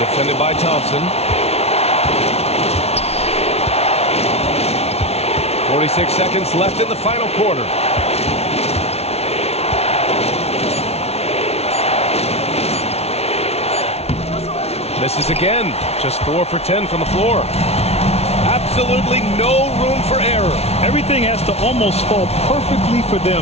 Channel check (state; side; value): late; right; 0.31 ms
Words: Defended by Thompson. 46 seconds left in the final quarter. Misses again. Just 4 for 10 from the floor. Absolutely no room for error. Everything has to almost fall perfectly for